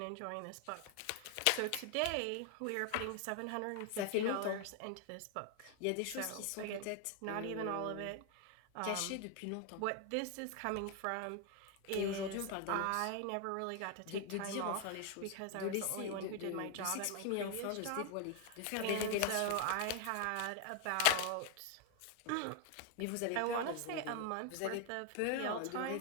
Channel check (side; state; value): both; different; correlation 0.00